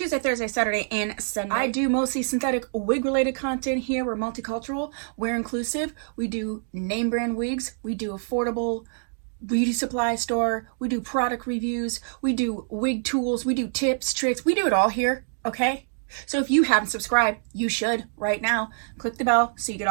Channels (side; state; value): left; silent; digital silence